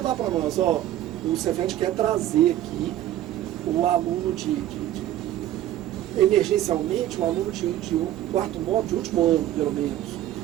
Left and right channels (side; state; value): left; quieter; 12.9 dB